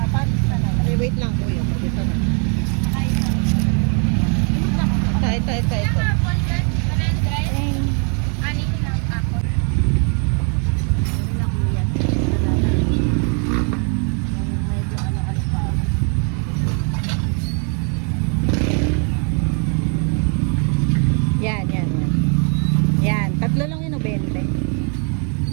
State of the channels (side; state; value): left; quieter; 39.9 dB